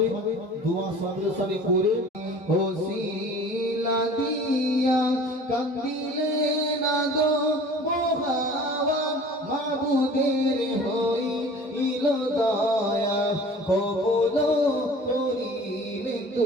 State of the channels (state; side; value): normal; both; correlation 0.45